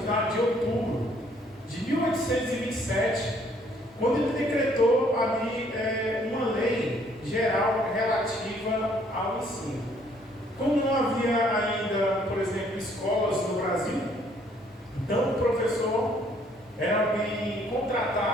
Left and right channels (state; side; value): normal; both; correlation 0.64